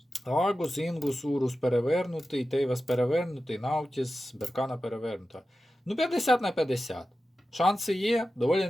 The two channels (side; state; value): both; normal; correlation 0.93